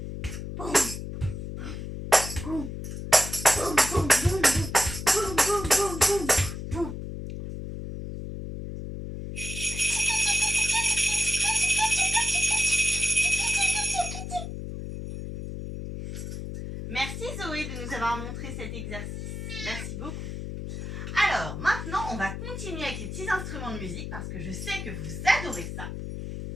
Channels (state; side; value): noise; left; hum, 7 dB below the sound